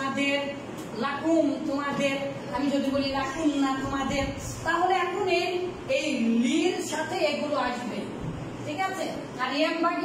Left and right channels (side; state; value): both; identical; correlation 1.00